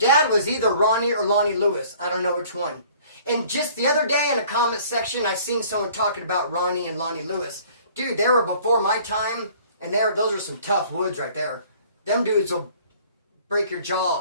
was either Ronnie or Lonnie Lewis. I don't know which one. And just the other day in the comment section, I seen someone talking about Ronnie and Lonnie Lewis. Dude, they were before my time, and those are some tough woods right there. Them dudes will break your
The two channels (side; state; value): both; inverted; correlation -0.53